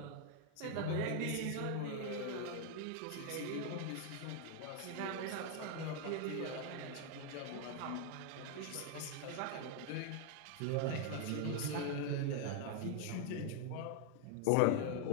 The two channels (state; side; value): different; both; correlation 0.00